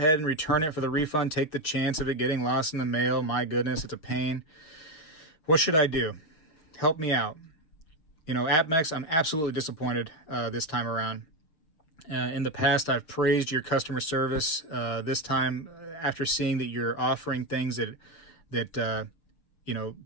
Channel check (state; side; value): late; right; 6.6 ms